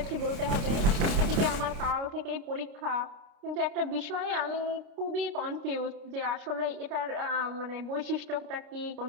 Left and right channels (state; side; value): late; left; 30 ms